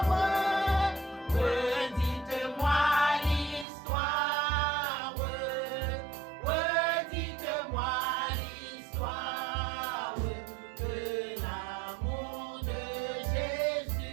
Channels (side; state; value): left; drops out; at 3.7 s